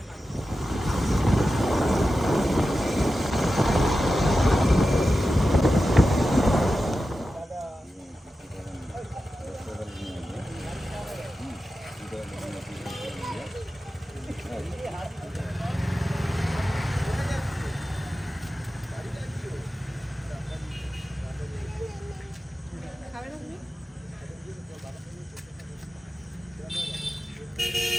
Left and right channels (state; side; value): normal; both; correlation 0.92